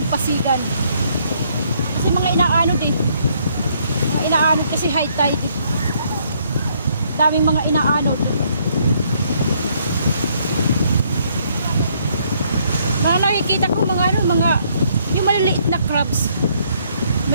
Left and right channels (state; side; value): inverted; both; correlation -0.68